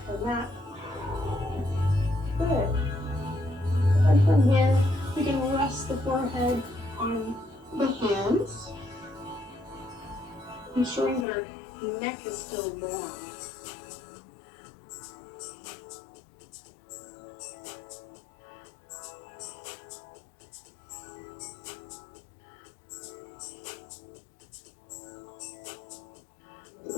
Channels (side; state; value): right; drops out; at 11.2 s